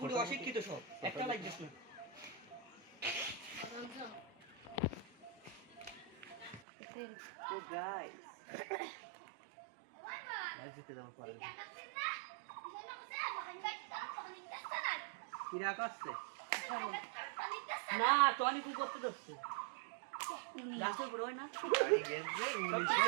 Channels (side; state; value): left; drops out; at 6.6 s